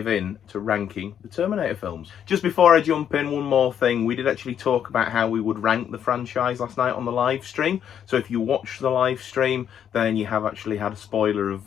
in to ranking the Terminator films. Just before I jump in, one more thing. We did actually talk about how we would rank the franchise last night on the live stream. So if you watch the live stream, then you have actually had a spoiler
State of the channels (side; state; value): right; quieter; 9.0 dB